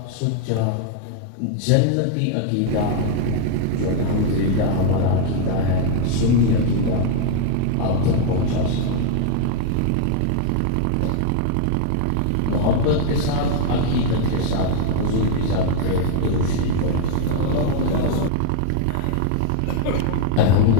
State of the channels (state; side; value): different; both; correlation 0.00